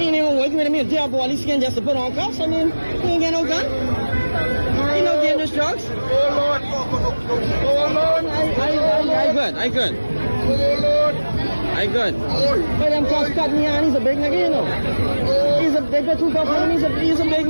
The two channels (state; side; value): inverted; both; correlation -1.00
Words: ain't even working with me a dead body skin just to put on cuffs. I mean, he ain't got no gun. He no dangerous drugs. Oh Lord. I good. Oh Lord. I good. But them cuffs cut me on. He's a big nigga, you know. They got two cuffs on him. He's a big